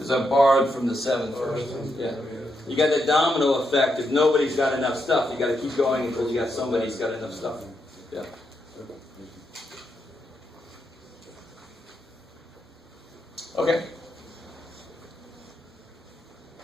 I borrowed from the 7 first. Yeah. You got that domino effect. If nobody's got enough stuff, you got to keep going until you got somebody who's got enough stuff. Yeah. Okay.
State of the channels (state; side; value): normal; both; correlation 0.82